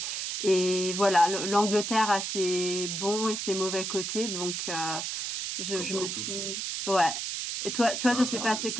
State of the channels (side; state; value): right; noise; hiss, 3 dB below the sound